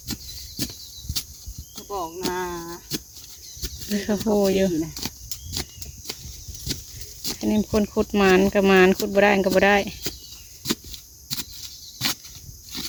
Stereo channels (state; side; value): identical; both; correlation 1.00